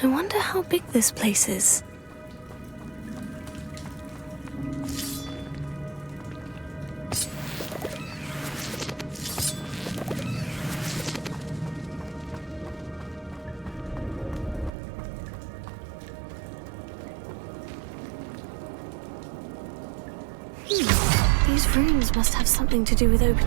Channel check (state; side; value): drops out; left; at 14.7 s